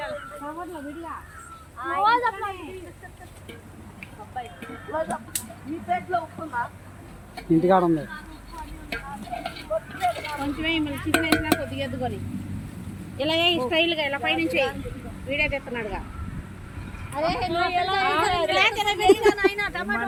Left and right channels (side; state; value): both; identical; correlation 1.00